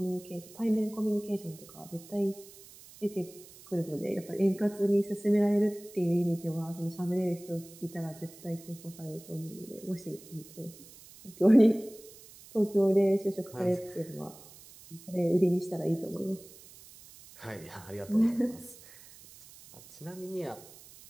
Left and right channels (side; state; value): right; noise; hiss, 20 dB below the sound